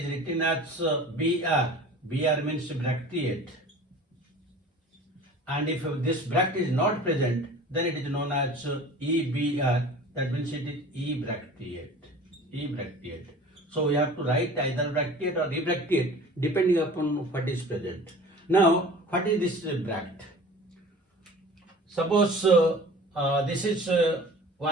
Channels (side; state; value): both; normal; correlation 0.42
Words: written as BR. BR means bracteate. And if this bract is not present, then it is known as EBR, that means it is ebracteate. So we have to write either bracteate or ebracteate depending upon what is present. Now, what is this bract? Suppose this is